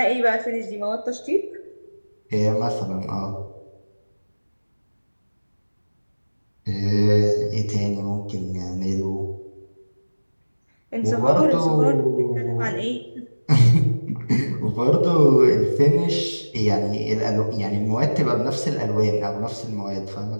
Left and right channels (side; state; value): both; inverted; correlation -1.00